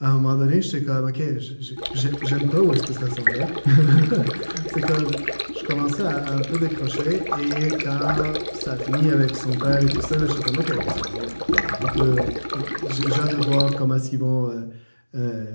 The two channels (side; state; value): both; inverted; correlation -1.00